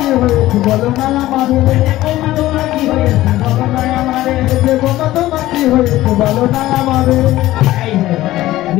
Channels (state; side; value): quieter; right; 15.9 dB